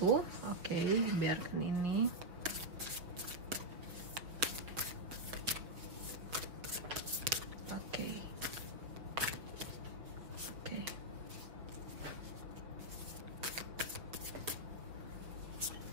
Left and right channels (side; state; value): left; late; 5.9 ms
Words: Oke, biarkan ini. Oke.